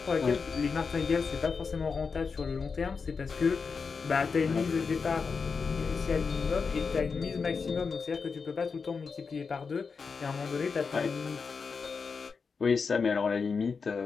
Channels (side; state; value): right; quieter; 5.2 dB